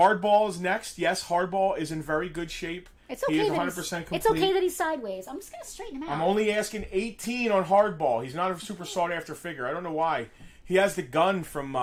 is next. Yes, Hardball is in very good shape. It's okay. He is 100% complete. It's okay that he's sideways. I'm just going to straighten him out. I'm only asking $18 on Hardball. He's not a super sought after figure. I don't know why. He has the gun from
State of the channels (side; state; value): both; identical; correlation 1.00